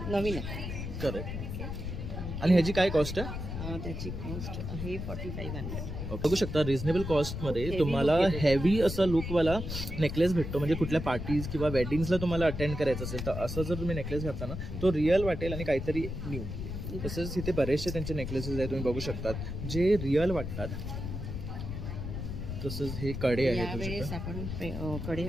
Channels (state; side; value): noise; left; rumble, 5 dB below the sound